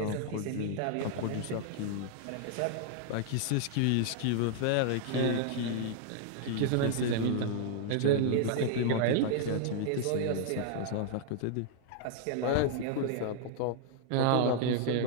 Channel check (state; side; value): different; both; correlation -0.01